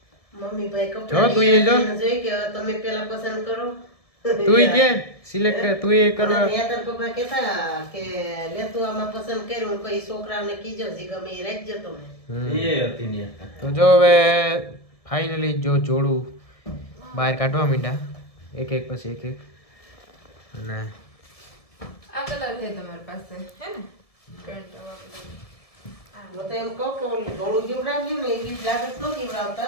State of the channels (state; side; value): late; right; 1.7 ms